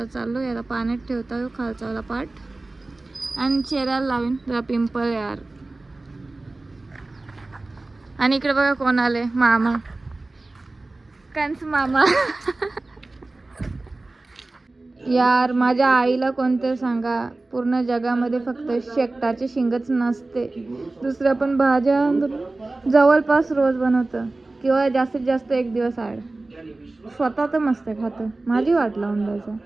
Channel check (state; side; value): quieter; left; 3.1 dB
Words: चाललो याला पाण्यात ठेवता येऊ खालचावाला पार्ट. आणि चेहऱ्याला लावीन जरा पिंपल यार. आणि इकडे बघा कोण आले, मामा, कंस मामा. यार माझ्या आईला कोणते सांगा, पूर्ण जगामध्ये फक्त शेकटाची शिंगच नसते. दुसऱ्या पण भाज्या जवळपास रोज बनवतं, किंवा जास्तीत जास्त एक दिवस आड. स्वतः तर मस्त खातं, माझी वाट लावून द्यायचं.